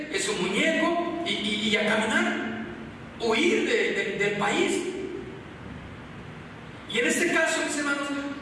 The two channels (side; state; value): both; identical; correlation 1.00